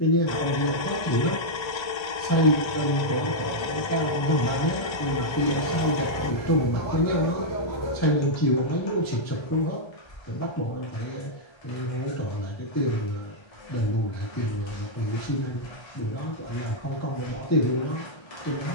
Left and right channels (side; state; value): right; late; 1.3 ms